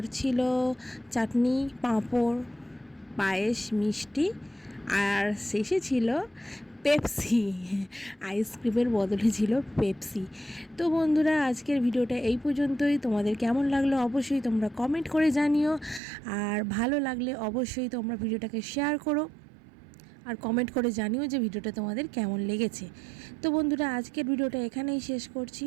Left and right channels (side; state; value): left; drops out; at 16.0 s